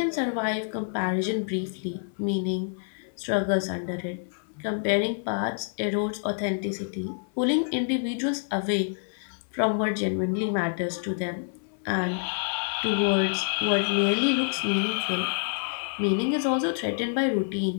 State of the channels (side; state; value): right; silent; 60 dB below the other